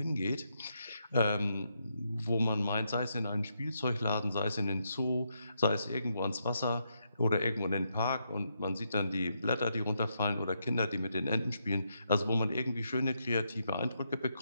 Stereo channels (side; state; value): both; inverted; correlation -0.80